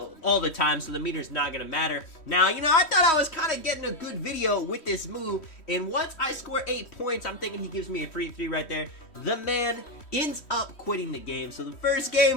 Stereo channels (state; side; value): late; right; 3.1 ms